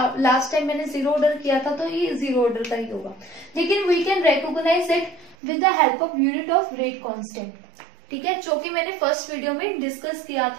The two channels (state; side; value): drops out; left; at 5.4 s